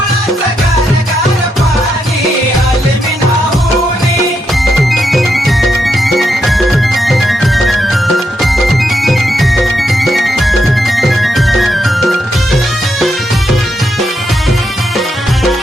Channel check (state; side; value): normal; both; correlation 0.81